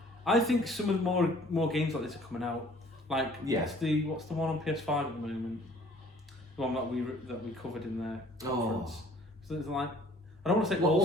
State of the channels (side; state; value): both; normal; correlation 0.54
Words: I think some of the more games like this are coming out. Like, what's the one on PS5 at the moment? The one that we covered in the conference. So it's like, I don't want to say